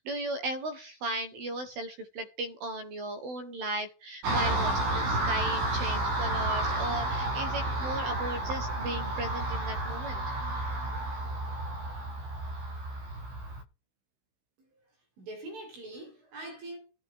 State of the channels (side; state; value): left; late; 16 ms